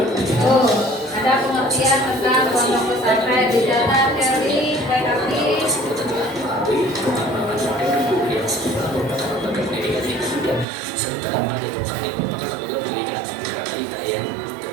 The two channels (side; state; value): left; drops out; at 10.7 s